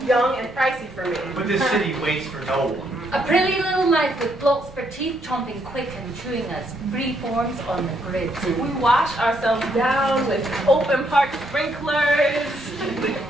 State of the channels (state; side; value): normal; both; correlation 0.73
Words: young, and pricey for me. But this city waits for no one. A pretty little life with blokes for teeth chomping quick and chewing us free forms on the grid. We wash ourselves down with open park sprinklers.